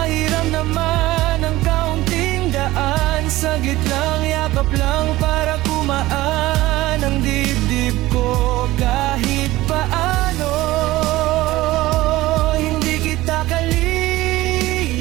naman ang kaunting daan. Saglit lang, yakap lang para kumaan ang dibdib ko. Kahit paano, hindi kita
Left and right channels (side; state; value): left; quieter; 17.6 dB